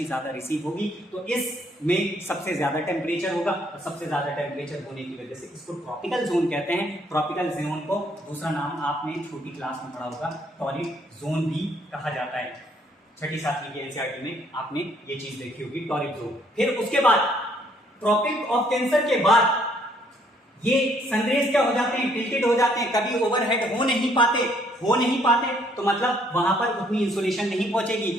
ज्यादा रिसीव होगी तो इसमें सबसे ज्यादा टेम्परेचर होगा, और सबसे ज्यादा टेम्परेचर होने की वजह से इसको ट्रॉपिकल जोन कहते हैं। ट्रॉपिकल जोन को दूसरा नाम आपने छोटी क्लास में पढ़ा होगा, टॉरिड जोन भी कहा जाता है, छठी सातवीं के एनसीईआरटी में आपने ये चीज देखी होगी, टॉरिड जोन। फिर उसके बाद ट्रॉपिक ऑफ कैंसर के बाद ये सनरेज क्या हो जाते हैं, टिल्टेड हो जाते हैं, कभी ओवरहेड हो नहीं पाते, तो मतलब वहां पर उतनी इंसोलेशन नहीं पहुंचेगी,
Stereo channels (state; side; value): normal; both; correlation 0.66